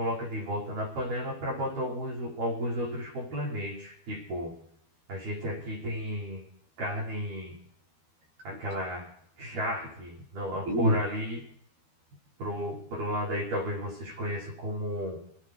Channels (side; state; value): left; late; 12 ms